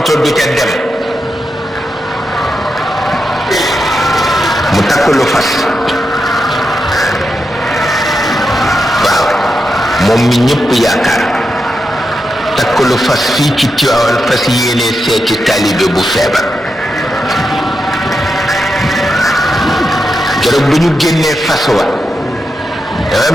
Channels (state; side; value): normal; both; correlation 0.86